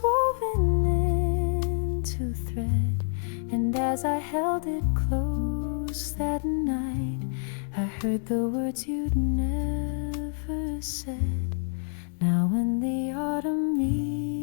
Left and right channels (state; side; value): silent; right; digital silence